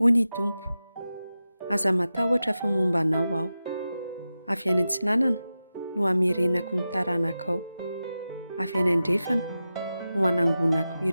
Hony Tompo, aza matahotra fa momba anao aho. Avy any antsinanana no hamerenako ny taranakao. Avy any andrefana no hanangonako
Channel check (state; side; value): inverted; both; correlation -0.93